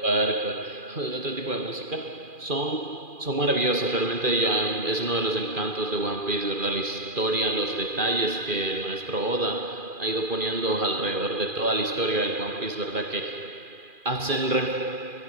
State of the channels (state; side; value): late; left; 2.4 ms